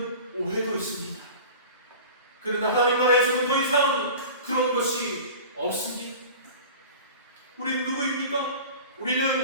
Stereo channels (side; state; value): both; inverted; correlation -0.37